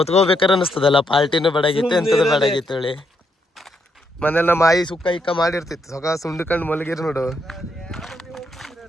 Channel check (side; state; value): both; normal; correlation 0.78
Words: ಅನಿಸ್ತದಲ್ಲ, ಪಾರ್ಟಿನೂ ಬಡಾಗಿತ್ತು ಎಂತದ ಬಡಾಗಿತ್ತು ಹೇಳಿ. ಮನೇಲಿ ನಮ್ಮ ಆಯಿ ಸುಕ್ಕ ಇಕ್ಕ ಮಾಡಿರ್ತಿತ್ತು, ಸೊಗ ಸುಂಡ್ಕೊಂಡು ಮಲಗಿರ್ ನೋಡು.